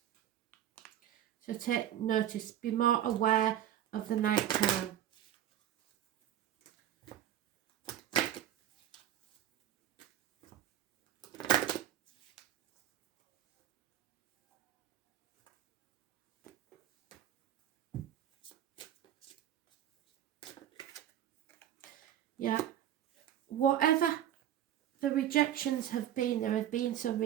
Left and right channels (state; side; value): quieter; left; 11.2 dB